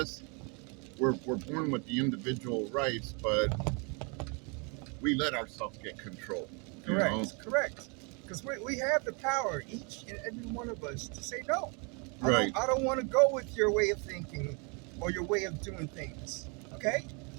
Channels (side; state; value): left; quieter; 33.9 dB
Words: we're born with the individual rights, but we let ourselves get controlled. Correct. Because we have the power, each and every one of us, to say no. Right. I don't want to go with your way of thinking or your way of doing things. Okay?